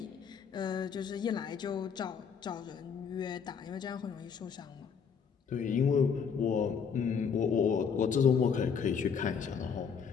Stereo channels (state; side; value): quieter; right; 6.6 dB